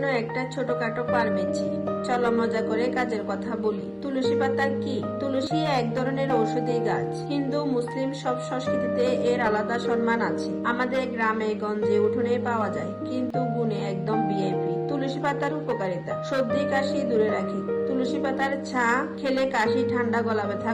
একটা ছোটখাটো পারমেচি। চলো মজা করে কাজের কথা বলি। তুলসী পাতা কি? তুলসী এক ধরনের ঔষধি গাছ। হিন্দু মুসলিম সব সংস্কৃতিতে এর আলাদা সম্মান আছে। আমাদের গ্রামে গঞ্জে উঠোনে পাওয়া যায়, কিন্তু গুণে একদম ভিআইপি। তুলসী পাতার উপকারিতা: সর্দি কাশি দূরে রাখে। তুলসী পাতার ছা খেলে কাশি, ঠান্ডা, গলা ব্যথা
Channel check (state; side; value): identical; both; correlation 1.00